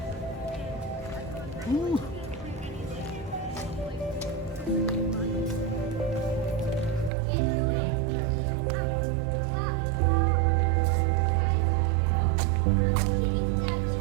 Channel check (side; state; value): left; drops out; at 7.1 s